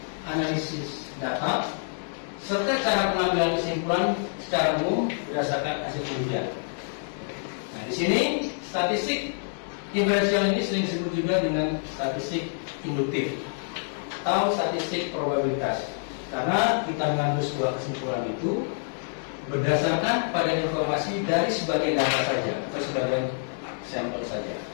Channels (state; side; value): silent; right; digital silence